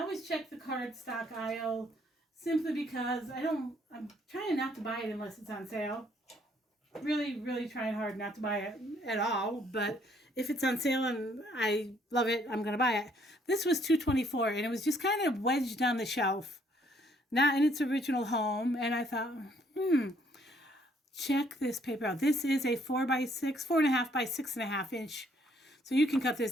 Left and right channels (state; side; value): normal; both; correlation 0.66